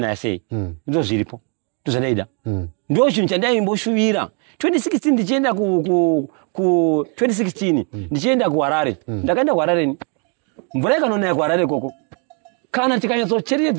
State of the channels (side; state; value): left; quieter; 37.5 dB